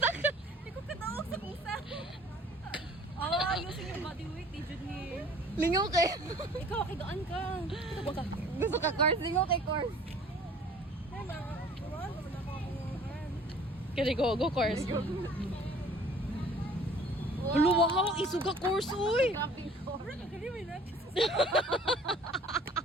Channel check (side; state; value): both; normal; correlation 0.51